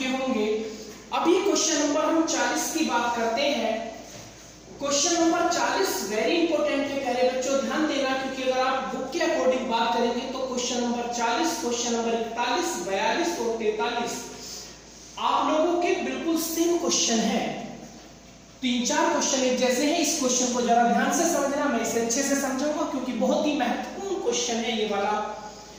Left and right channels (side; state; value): both; identical; correlation 1.00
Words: होंगे। अभी क्वेश्चन नंबर हम 40 की बात करते हैं। क्वेश्चन नंबर 40 वेरी इंपॉर्टेंट है प्यारे बच्चों, ध्यान देना, क्योंकि अगर आप बुक के अकॉर्डिंग बात करेंगे तो क्वेश्चन नंबर 40, क्वेश्चन नंबर 41, 42 और 43 आप लोगों के बिल्कुल सेम क्वेश्चन है। 3-4 क्वेश्चन एक जैसे हैं। इस क्वेश्चन को जरा ध्यान से समझना, मैं इसे अच्छे से समझाऊंगा क्योंकि बहुत ही महत्वपूर्ण क्वेश्चन है ये वाला।